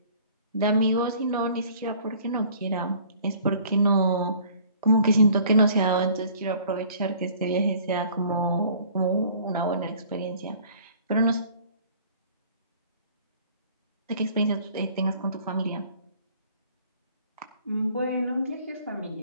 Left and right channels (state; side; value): inverted; both; correlation -0.53